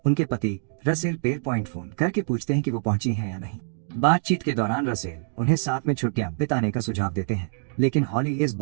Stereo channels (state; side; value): silent; left; digital silence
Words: उनके पति रसेल पेर पॉइंट फोन करके पूछते हैं कि वो पहुंची हैं या नहीं। बातचीत के दौरान रसेल उन्हें साथ में छुट्टियां बिताने का सुझाव देते हैं, लेकिन हॉली इस